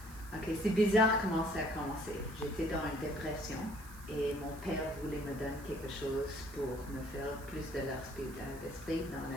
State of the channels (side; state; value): right; noise; hiss, 19 dB below the sound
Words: Ok, c'est bizarre comment ça a commencé. J'étais dans une dépression et mon père voulait me donner quelque chose pour me faire plus de l'esprit dans